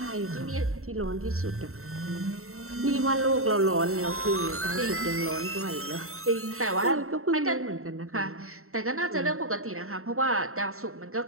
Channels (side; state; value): left; late; 0.63 ms